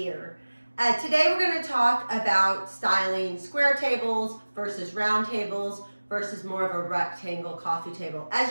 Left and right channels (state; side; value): inverted; both; correlation -1.00